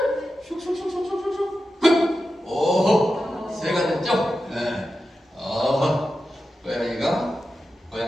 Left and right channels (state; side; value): normal; both; correlation 0.91